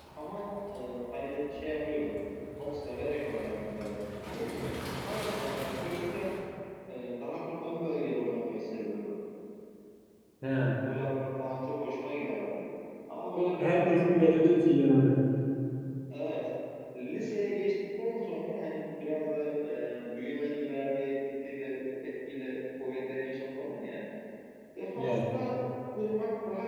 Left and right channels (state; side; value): identical; both; correlation 1.00